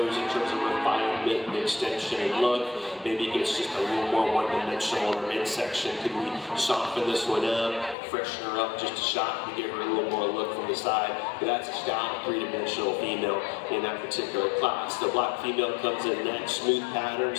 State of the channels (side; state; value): right; drops out; at 8.0 s